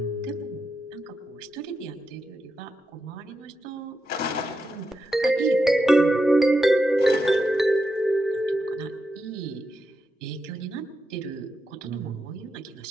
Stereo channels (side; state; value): both; normal; correlation 0.87